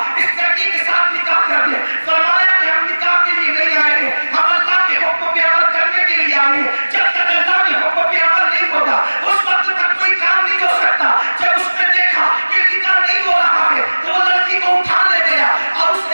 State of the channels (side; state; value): both; inverted; correlation -1.00